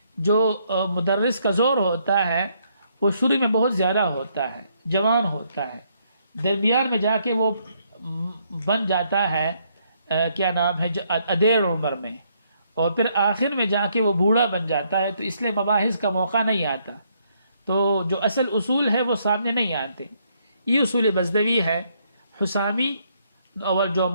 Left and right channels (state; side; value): inverted; both; correlation -0.72